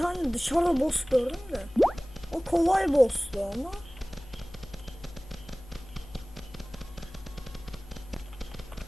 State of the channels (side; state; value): left; noise; hum, 19 dB below the sound